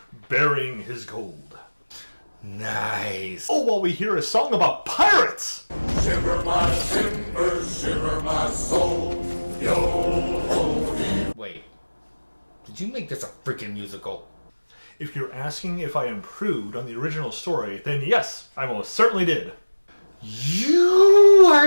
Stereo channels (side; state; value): both; inverted; correlation -1.00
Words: burying his gold. Nice. Oh, while we hear a song about pirates! Shiver my timbers, shiver my soul, yo-ho-dee. Wait. Did you make this a freaking musical? If you're asking if I improved on the original story, then yes, I most certainly did. You